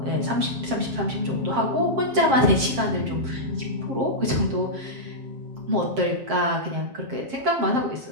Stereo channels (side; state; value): left; late; 7.6 ms